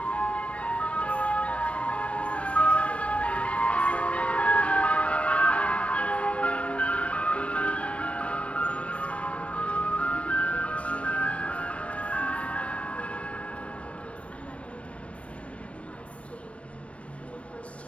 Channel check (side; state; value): right; late; 0.062 ms